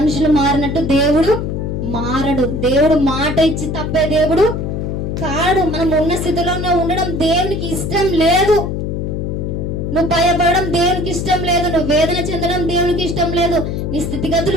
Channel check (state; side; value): noise; left; hum, 3 dB below the sound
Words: మారినట్టు దేవుడు మారడు. దేవుడు మాట ఇచ్చి తప్పే దేవుడు కాడు. మనం ఉన్న స్థితిలోనే ఉండడం దేవునికి ఇష్టం లేదు. నువ్వు భయపడడం దేవునికి ఇష్టం లేదు. నువ్వు వేదన చెందడం దేవునికి ఇష్టం లేదు. నీ